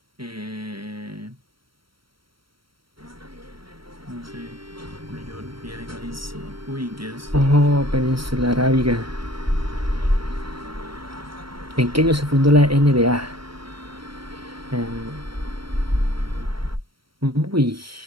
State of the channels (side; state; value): left; late; 0.74 ms